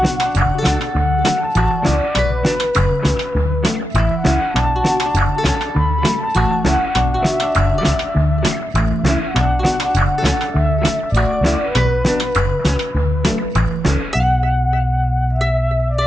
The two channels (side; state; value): both; normal; correlation 0.89